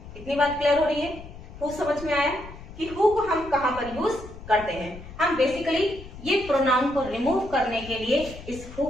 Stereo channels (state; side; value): noise; left; rumble, 15 dB below the sound